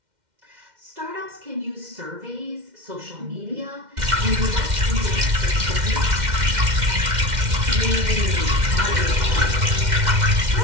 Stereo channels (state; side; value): late; left; 2.1 ms